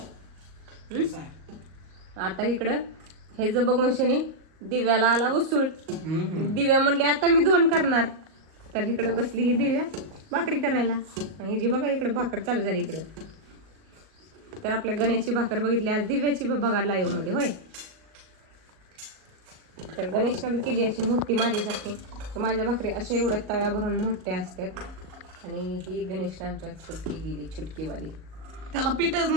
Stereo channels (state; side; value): late; left; 38 ms